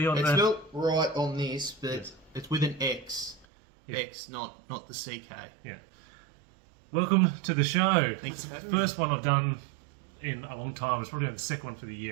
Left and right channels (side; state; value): left; drops out; at 3.5 s